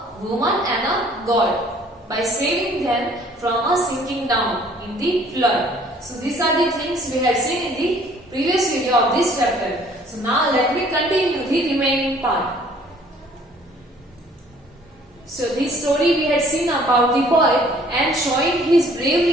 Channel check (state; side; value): normal; both; correlation 0.57